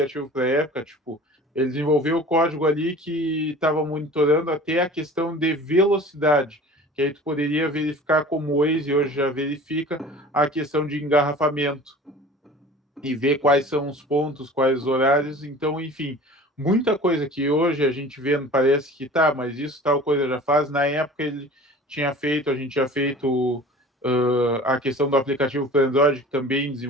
para a época, tipo, ele desenvolveu o código ali que estava monitorando até a questão de velocidade, que aí tu poderia verificar como o Waze hoje já verifica a questão de engarrafamento e ver quais são os pontos, quais os horários. Então, enfim, muita coisa que hoje a gente vê, parece que tá, mas isso tal coisa já faz. Na época ele tinha feito, a gente tinha feito a questão do aplicativo para Android, que também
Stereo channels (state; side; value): normal; both; correlation 0.42